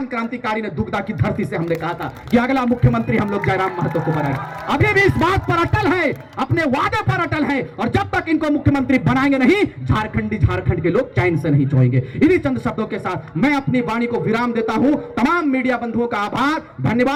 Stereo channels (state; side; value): identical; both; correlation 1.00